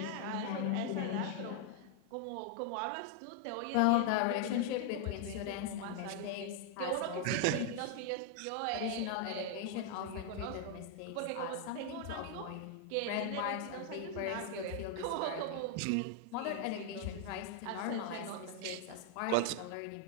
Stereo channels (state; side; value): different; both; correlation 0.00